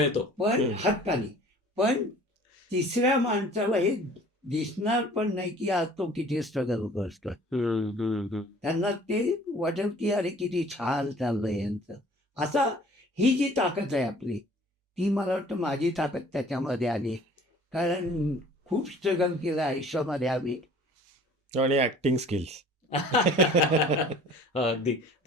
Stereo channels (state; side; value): normal; both; correlation 0.50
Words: पण हक्कानी. पण तिसऱ्या माणसाला हे दिसणार पण नाही की आज तो किती स्ट्रगल करतोय. त्यांना ते वाटेल की अरे किती छान चाललंय यांचं. असा ही जी ताकद आहे आपली, ती मला वाटतं माझी ताकद त्याच्यामध्ये आली. कारण खूप स्ट्रगल केलं आयुष्यामध्ये आम्ही. आणि ऍक्टिंग स्किल्स. अगदी.